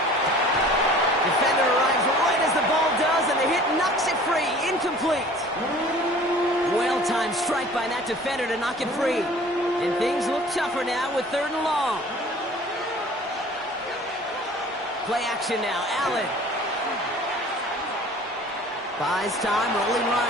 Defender arrives right as the ball does, and the hit knocks it free. Incomplete. Well-timed strike by that defender to knock it free. And things look tougher now with 3rd and long. Play action now. Allen. Buys time, rolling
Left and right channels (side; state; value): both; normal; correlation 0.48